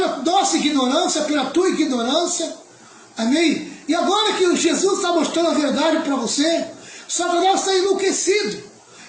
nossa ignorância, pela tua ignorância, amém? E agora que Jesus está mostrando a verdade para você, Satanás está enlouquecido.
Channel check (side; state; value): both; identical; correlation 1.00